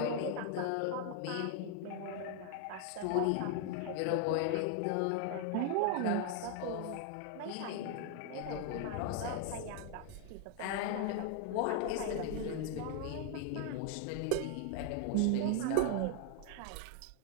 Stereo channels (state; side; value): different; both; correlation 0.00